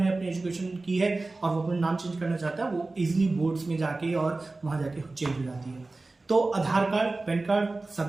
अपनी एजुकेशन की है और वो अपना नाम चेंज करना चाहता है, वो इजिली बोर्ड्स में जाके और वहां जाके चेंज हो जाती है। तो आधार कार्ड, पैन कार्ड, सब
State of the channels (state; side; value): quieter; left; 3.3 dB